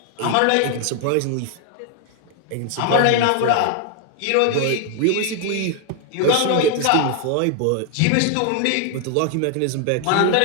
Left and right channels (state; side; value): different; both; correlation 0.00